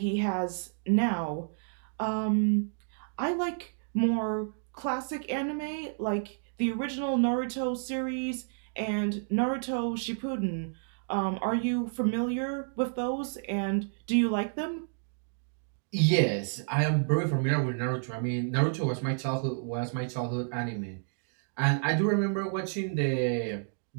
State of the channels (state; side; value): silent; left; digital silence